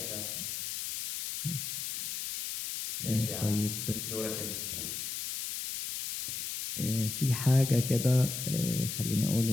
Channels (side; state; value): left; noise; hiss, 4 dB below the sound